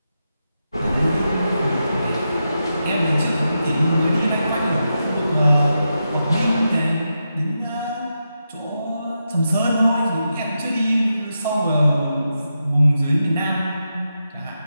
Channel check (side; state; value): both; inverted; correlation -0.87